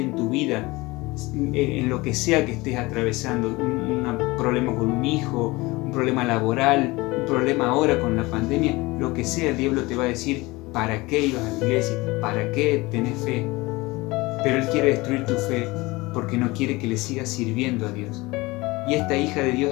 tu vida, en lo que sea que estés atravesando, un problema con un hijo, un problema laboral, un problema ahora con la pandemia, lo que sea, el diablo te va a decir, ¿para qué ibas a la iglesia? ¿Para qué tenés fe? Pero él quiere destruir tu fe porque no quiere que le sigas sirviendo a Dios. Y esta hija de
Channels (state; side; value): quieter; right; 22.2 dB